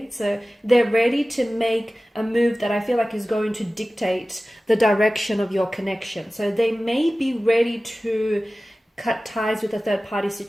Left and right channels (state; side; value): normal; both; correlation 0.97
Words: So they're ready to make a move that I feel like is going to dictate the direction of your connection. So they may be ready to cut ties with a third party